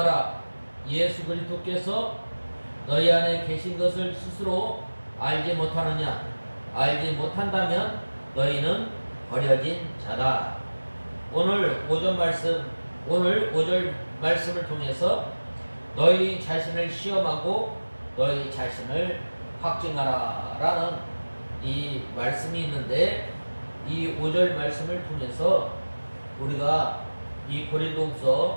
예수 그리스도께서 너희 안에 계신 것을 스스로 알지 못하느냐? 알지 못한다면 너희는 버려진 자다. 오늘 5절 말씀을 통해서 너희 자신을 시험하고 너희 자신을 확증하라 라는 이 말씀이 있는데 이 5절 말씀을 통해서 우리가 이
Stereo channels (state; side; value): inverted; both; correlation -1.00